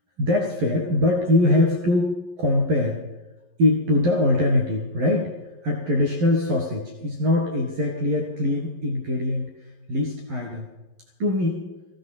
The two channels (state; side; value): late; left; 11 ms